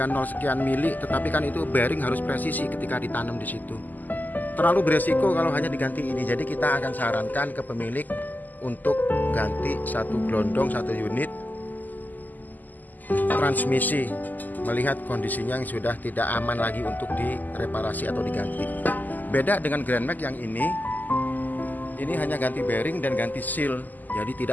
0 sekian mili. Tetapi kan itu bearing harus presisi ketika ditanam di situ. Terlalu beresiko kalau hanya diganti ini. Jadi kita akan sarankan ke pemilik untuk ganti satu gelondong, satu unit transmisi, melihat kondisinya yang sudah tidak aman lagi untuk direparasi atau diganti. Beda dengan Grand Max yang ini hanya ganti bearing dan ganti seal. Jadi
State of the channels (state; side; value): late; right; 0.084 ms